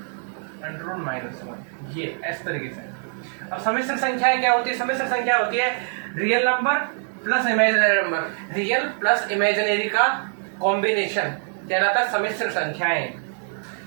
√-1, ये इस तरीके से। अब सम्मिश्र संख्याएं क्या होती है? सम्मिश्र संख्या होती है real number plus imaginary number. Real plus imaginary का कॉम्बिनेशन कहलाता है सम्मिश्र संख्याएं।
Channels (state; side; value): silent; left; 63 dB below the other